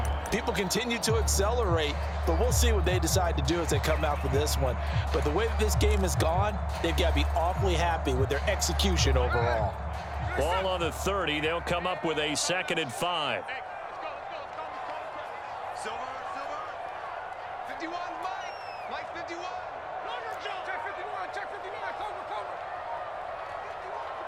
people continue to accelerate, but we'll see what they decide to do as they come out for this one. But the way that this game has gone, they've got to be awfully happy with their execution overall. Ball on the 30. They'll come up with a 2nd and 5. Silver. 51, Mike 51. Check 51, check 59, cover.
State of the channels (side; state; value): both; identical; correlation 1.00